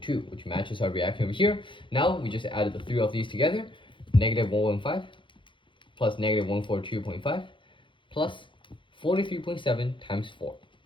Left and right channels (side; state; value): right; late; 0.24 ms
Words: which matches our reaction over here. Now we just added the 3 of these together, negative 115 plus negative 142.5 plus 43.7 times 4.